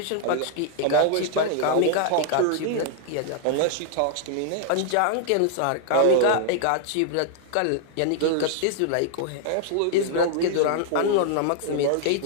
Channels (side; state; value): both; different; correlation -0.01